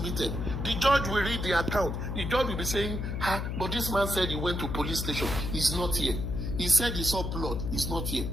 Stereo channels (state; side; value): noise; left; hum, 3 dB below the sound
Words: The judge will read the account. The judge will be saying, but this man said he went to police station. He's not here. He said he saw blood. He's not here.